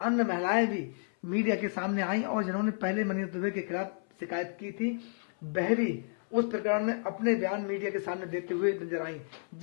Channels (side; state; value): right; silent; 57 dB below the other